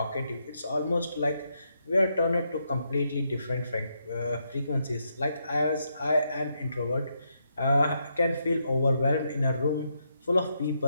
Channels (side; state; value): both; inverted; correlation -0.80